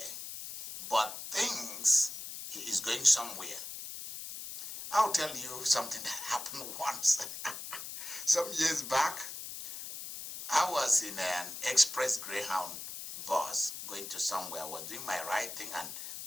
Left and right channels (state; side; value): noise; left; hiss, 8 dB below the sound